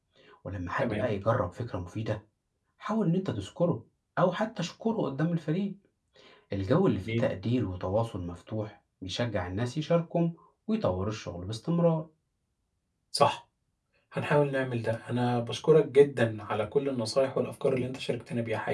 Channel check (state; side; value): identical; both; correlation 1.00